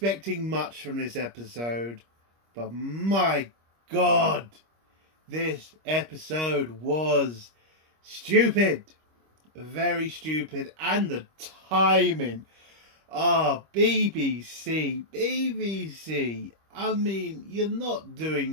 much from this episode, but my god! This episode was stupid! Very stupid, and the timing. Ah, BBC, BBC. I mean, you're not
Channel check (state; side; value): late; left; 25 ms